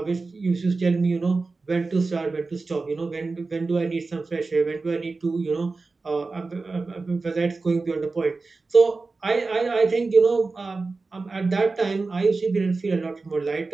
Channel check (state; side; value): quieter; left; 3.8 dB